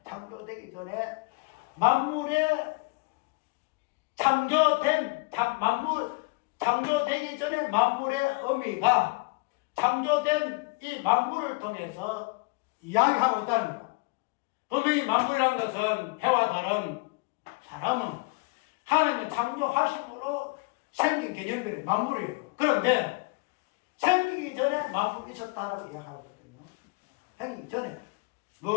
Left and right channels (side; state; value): right; quieter; 28.7 dB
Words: 창조되기 전에 만물의 의미가 창조된 이 만물을 통해서 이야기하고 있다는 거예요. 분명히 만물이라는 것은 해와 다른 사람은 하나님의 창조하심으로 생긴 개념들이 만물이에요. 그런데 생기기 전에 만물이 있었다라고 이야기하거든요. 생기기 전에